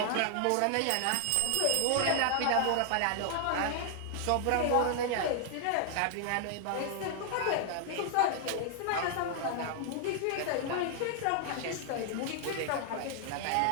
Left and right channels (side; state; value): both; different; correlation 0.00